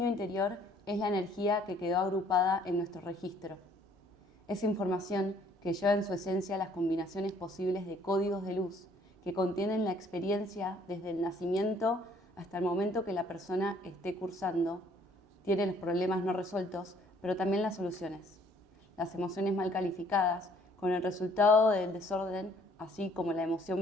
interior es la energía que quedó agrupada en nuestro registro. Es información que lleva en su esencia las combinaciones posibles de códigos de luz que contienen la experiencia desde el nacimiento hasta el momento que la persona esté cursando, tiene los problemas no resueltos, pero también las soluciones, las emociones mal calificadas, con el resultado del desorden, así como la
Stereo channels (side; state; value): both; normal; correlation 0.61